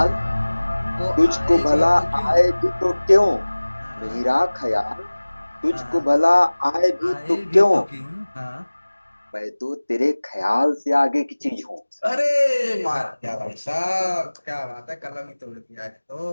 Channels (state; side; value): inverted; both; correlation -1.00